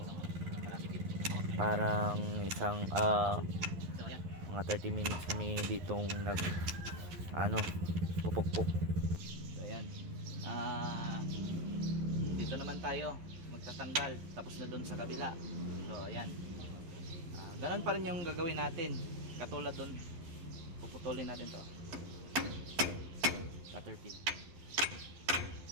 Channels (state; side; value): late; left; 11 ms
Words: parang isang mga 30 minutes kami ditong pupukpok. So, ayan. Dito naman tayo magtatanggal. Tapos na dun sa kabila. So, ayan. Ganun pa rin yung gagawin natin. Katulad dun, puputulin natin to. Cutter pin.